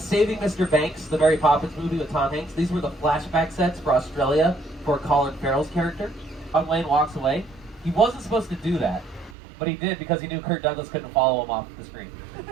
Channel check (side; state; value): left; drops out; at 9.3 s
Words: Mr. Banks, the Mary Poppins movie with Tom Hanks. These were the flashback sets for Australia for Colin Farrell's character. John Wayne walks away. He wasn't supposed to do that, but he did because he knew Kirk Douglas couldn't follow him off the screen.